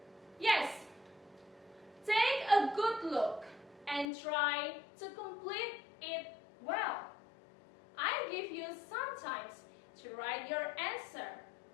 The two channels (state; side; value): drops out; right; at 4.0 s